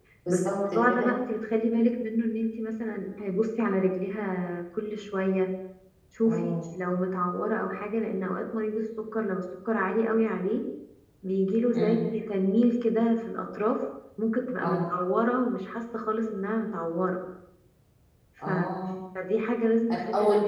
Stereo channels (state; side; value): identical; both; correlation 1.00